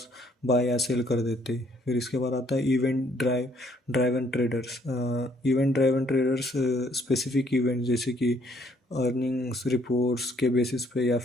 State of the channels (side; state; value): both; normal; correlation 0.65